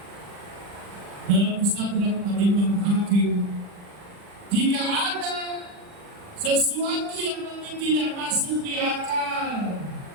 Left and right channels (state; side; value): late; left; 40 ms